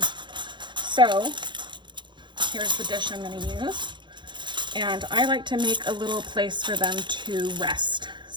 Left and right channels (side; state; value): left; late; 0.23 ms